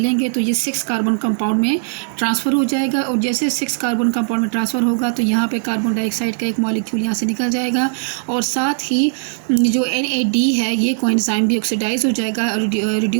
तो ये 6 कार्बन कंपाउंड में ट्रांसफ़र हो जाएगा। और जैसे 6 कार्बन कंपाउंड में ट्रांसफ़र होगा तो यहाँ पे कार्बन डाइऑक्साइड का एक मॉलिक्यूल यहाँ से निकल जाएगा और साथ ही जो NAD है ये कोएंजाइम भी ऑक्सीडाइज हो जाएगा,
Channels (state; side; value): silent; left; 66 dB below the other